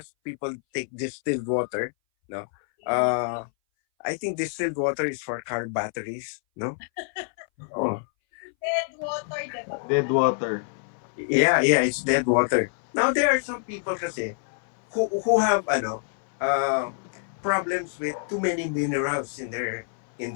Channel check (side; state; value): right; silent; 59 dB below the other